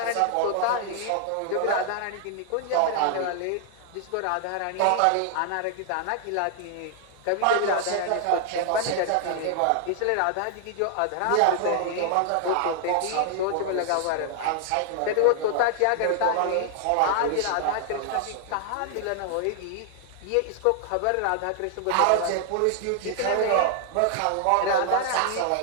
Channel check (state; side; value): different; both; correlation 0.00